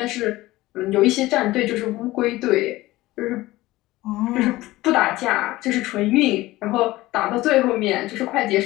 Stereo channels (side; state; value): right; quieter; 18.1 dB